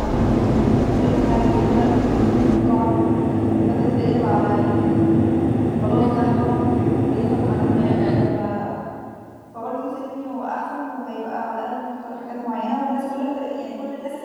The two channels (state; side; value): identical; both; correlation 1.00